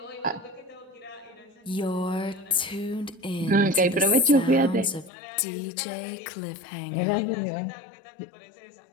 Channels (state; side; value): drops out; right; at 5.1 s